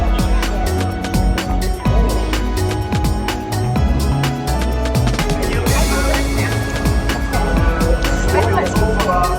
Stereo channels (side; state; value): both; identical; correlation 1.00